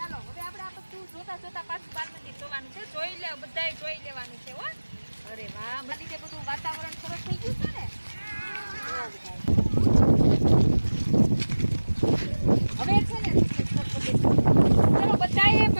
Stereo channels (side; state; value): both; inverted; correlation -1.00